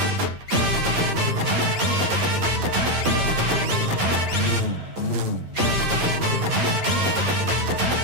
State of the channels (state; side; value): late; left; 10 ms